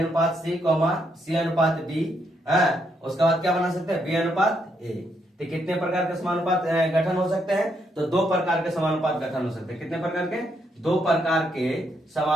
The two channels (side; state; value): both; normal; correlation 0.76